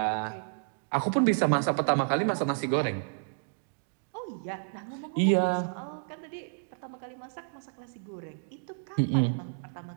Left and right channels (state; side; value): silent; left; digital silence